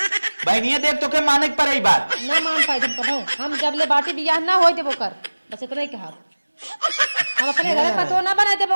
बहनिया देख तो के माने के पड़े बात ना मान पाए तुम कभाऊ हम जब ले बाटी बियाह ना होई देबो कर बस इतना ही कहा हम अपने घर पतो ना बनाए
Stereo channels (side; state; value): both; inverted; correlation -1.00